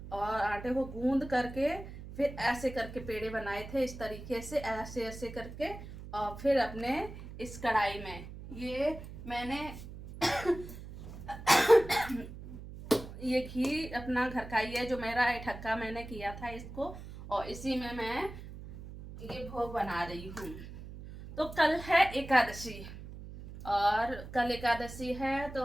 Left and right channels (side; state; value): right; noise; hum, 13 dB below the sound